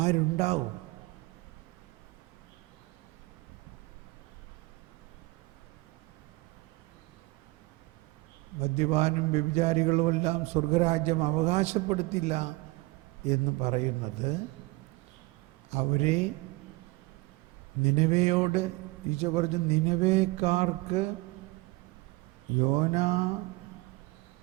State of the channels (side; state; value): left; quieter; 22.7 dB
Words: മദ്യപാനും വ്യഭിചാരികളുമെല്ലാം സ്വർഗരാജ്യം അവകാശപ്പെടുത്തില്ല എന്ന് പറയുന്നത് അവരെ നിനവയോട് ഈശോ പറഞ്ഞു, നിനവേക്കാർക്ക് യോന